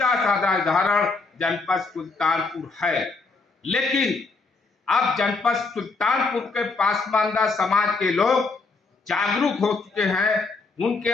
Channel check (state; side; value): quieter; right; 4.0 dB